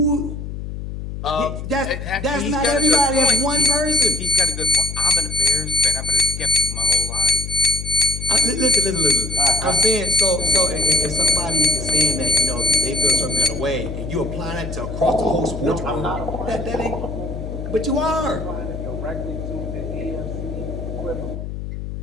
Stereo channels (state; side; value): noise; left; hum, 7 dB below the sound